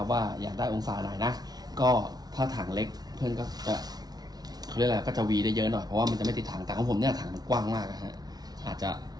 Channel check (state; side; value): late; left; 0.19 ms